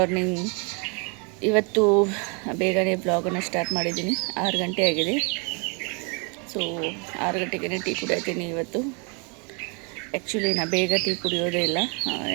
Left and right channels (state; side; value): quieter; left; 34.3 dB